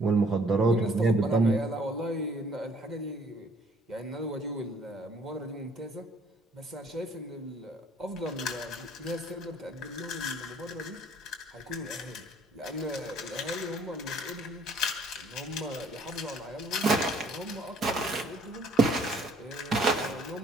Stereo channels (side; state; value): both; normal; correlation 0.59